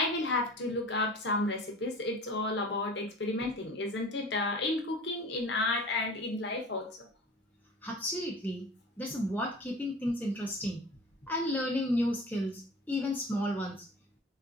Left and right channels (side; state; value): both; normal; correlation 0.39